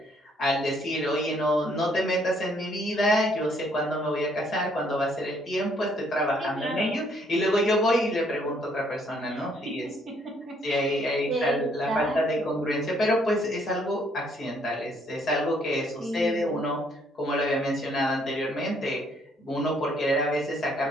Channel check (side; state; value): both; normal; correlation 0.67